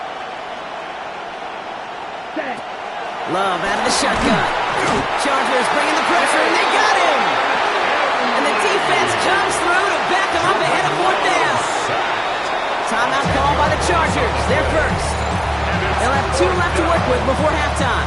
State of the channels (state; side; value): identical; both; correlation 1.00